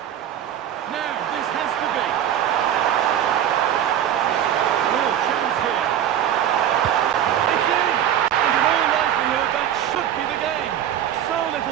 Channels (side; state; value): left; quieter; 10.4 dB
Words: Now, this has to be. Real chance here. It's in! And in all likelihood, that should be the game. So